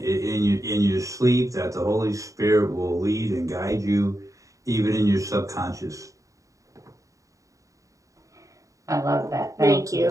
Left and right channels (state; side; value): late; left; 0.16 ms